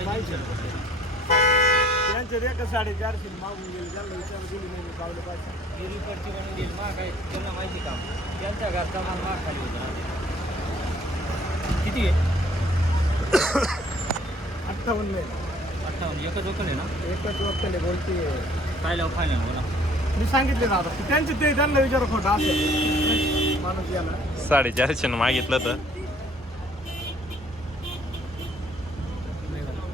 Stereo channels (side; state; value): both; normal; correlation 0.58